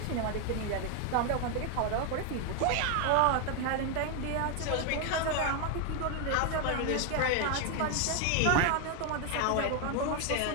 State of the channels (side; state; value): both; different; correlation 0.01